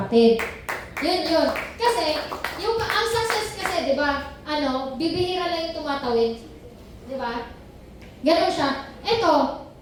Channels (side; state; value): both; identical; correlation 1.00